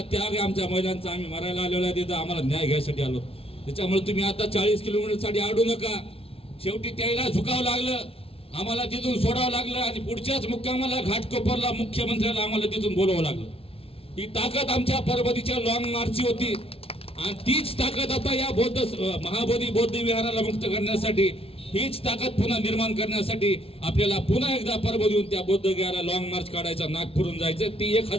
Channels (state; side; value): late; right; 0.27 ms